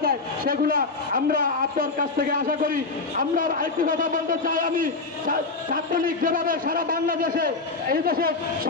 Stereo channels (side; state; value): right; quieter; 3.8 dB